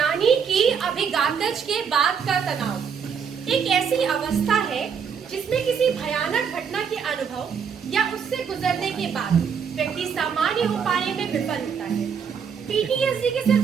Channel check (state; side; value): quieter; left; 6.8 dB